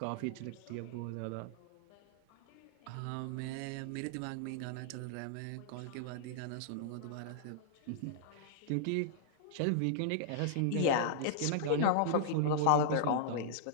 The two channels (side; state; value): both; different; correlation -0.02